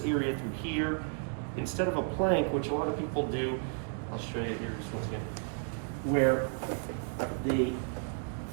area through here, instead of a plank, which a lot of people do, I'll show you here just once again, where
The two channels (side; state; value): left; silent; 56 dB below the other